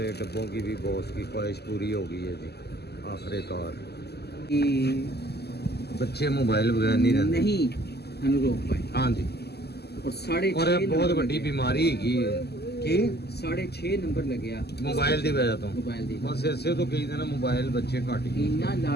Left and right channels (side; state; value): right; late; 0.47 ms